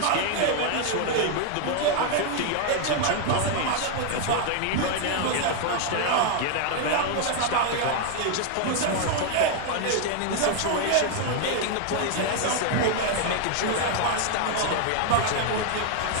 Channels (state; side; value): different; both; correlation 0.00